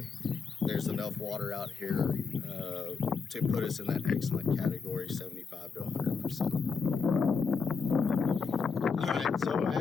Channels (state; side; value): quieter; right; 5.2 dB